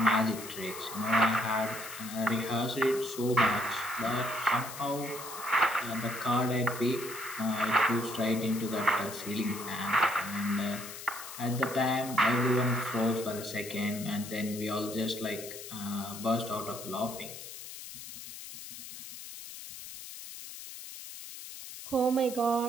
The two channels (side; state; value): left; noise; hiss, 11 dB below the sound